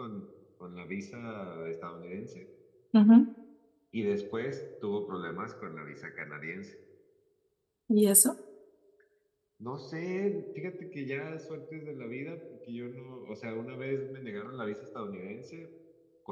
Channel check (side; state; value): both; identical; correlation 1.00